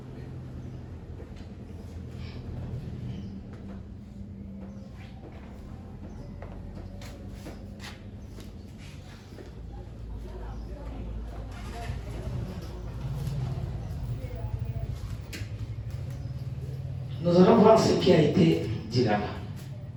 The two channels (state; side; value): identical; both; correlation 1.00